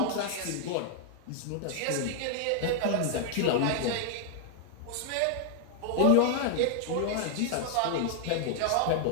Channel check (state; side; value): different; both; correlation 0.00